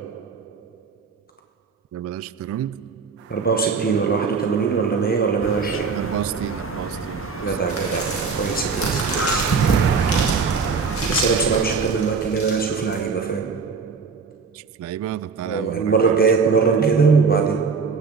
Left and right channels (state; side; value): quieter; left; 5.2 dB